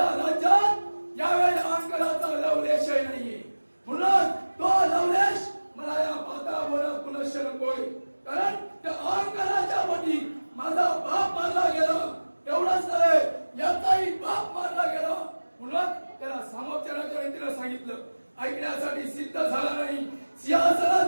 राज्यात यावेळी अहंकाराचा लवलेशही नाहीये, म्हणून तो लवलेश मला या माता बोला पुनश्च नकोय, कारण त्या अहंकाराच्या पोटी माझा बाप मारला गेला, एवढंच नव्हे याचाही बाप मारला गेला, म्हणून त्याला सामोपचाराच्या रीतीने सांगितलं, ऐकण्यासाठी सिद्ध झाला नाही,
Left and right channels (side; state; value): both; inverted; correlation -1.00